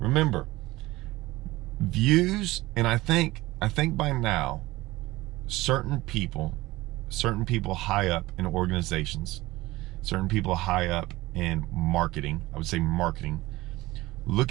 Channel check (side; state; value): left; quieter; 18.9 dB